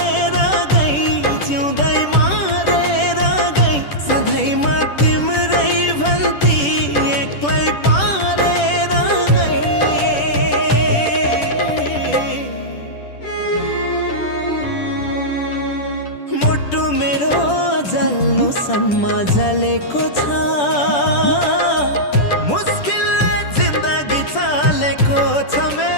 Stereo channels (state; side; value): late; right; 10 ms